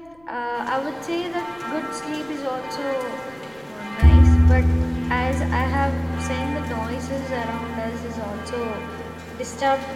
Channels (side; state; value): left; noise; rumble, 30 dB below the sound